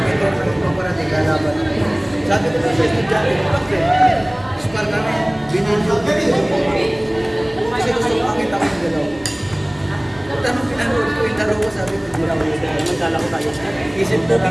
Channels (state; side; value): noise; right; rumble, 24 dB below the sound